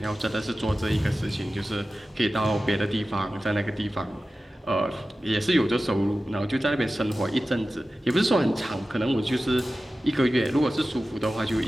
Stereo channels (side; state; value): both; normal; correlation 0.95